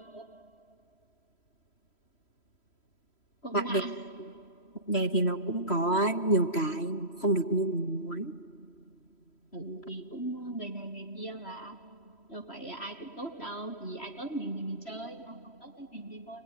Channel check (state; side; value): late; right; 3.1 ms